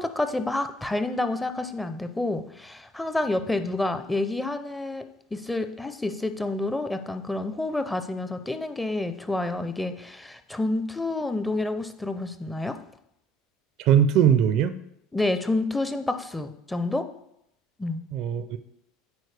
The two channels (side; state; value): both; normal; correlation 0.63